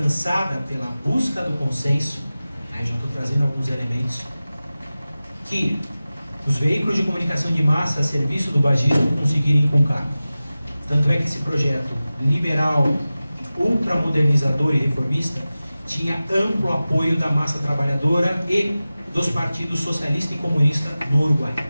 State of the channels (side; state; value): both; inverted; correlation -0.96